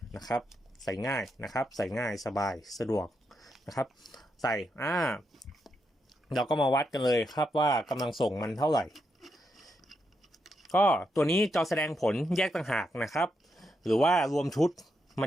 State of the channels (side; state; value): both; normal; correlation 0.82